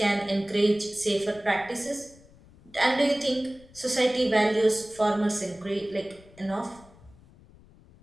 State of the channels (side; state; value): left; noise; rumble, 25 dB below the sound